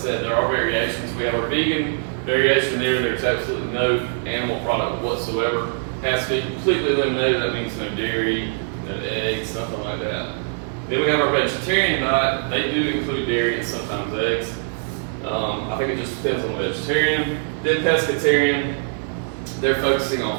there are variations. We have our vegan variation there. There's absolutely no animal product whatsoever. Has to be completely eliminated. That means no dairy, no eggs, something like that. Then we have our vegetarian diet. They do include dairy and sometimes eggs. I think it just depends on the vegetarian. Then pescatarian, they're focusing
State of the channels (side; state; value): left; silent; digital silence